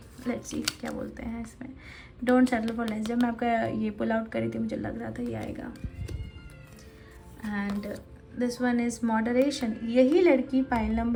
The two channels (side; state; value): both; identical; correlation 1.00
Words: लेट्स सी क्या बोलते हैं इसमें, डोंट सेटल फॉर लेस। जब मैं आपका ये पुल आउट करी थी मुझे लग रहा था ये आएगा। And this one is moderation. यही लड़की पाइल